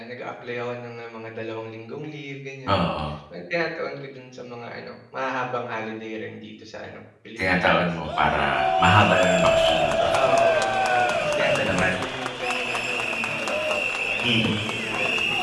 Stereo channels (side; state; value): both; identical; correlation 1.00